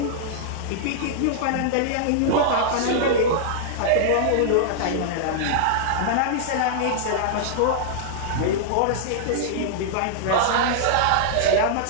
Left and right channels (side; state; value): both; different; correlation -0.01